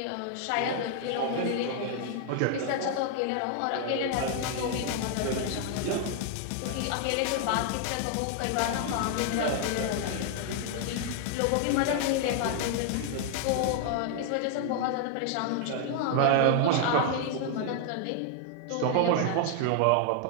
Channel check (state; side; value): different; both; correlation 0.00